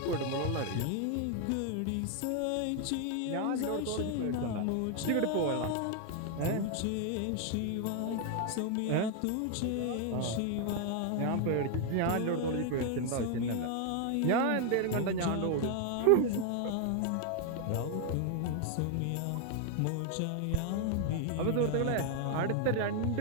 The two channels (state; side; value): different; both; correlation 0.00